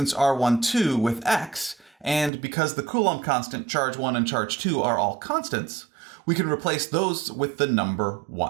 r1, 2 with x, and because the Coulomb constant, charge 1 and charge 2 are all constants, we can replace those with the number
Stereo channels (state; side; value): drops out; left; at 2.3 s